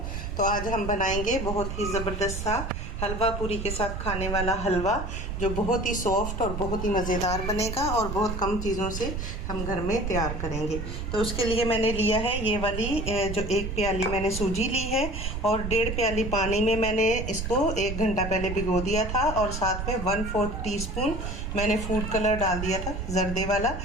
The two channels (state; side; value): noise; right; rumble, 5 dB below the sound